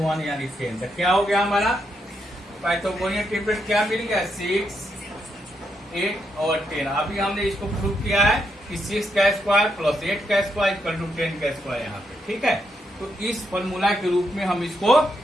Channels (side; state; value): both; normal; correlation 0.80